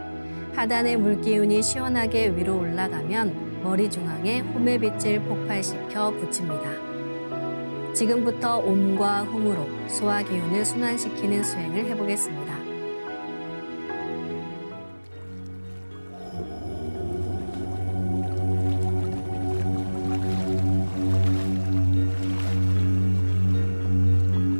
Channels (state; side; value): inverted; both; correlation -1.00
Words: 하단의 물기운이 시원하게 위로 올라가면 머리 중앙에 홈의 빛을 폭발시켜 붙입니다. 지금부터 옴과 훔으로 소화 기운을 순환시키는 수행을 해보겠습니다.